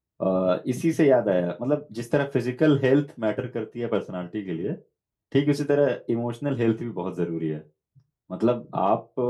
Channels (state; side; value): identical; both; correlation 1.00